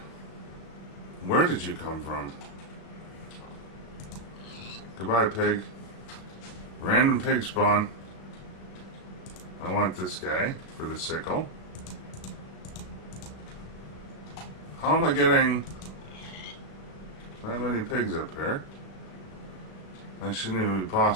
Where did you come from? Goodbye, pig. Random pig spawn. I want this guy for the sickle. How am I getting that many pigs up here? That shouldn't even be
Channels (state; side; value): late; right; 36 ms